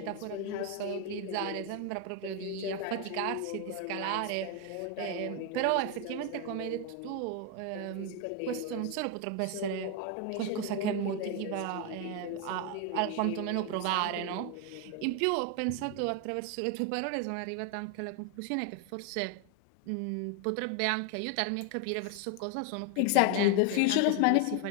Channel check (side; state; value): both; different; correlation 0.01